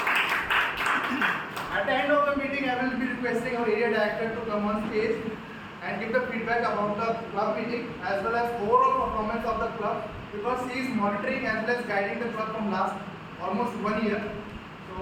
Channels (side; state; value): both; identical; correlation 1.00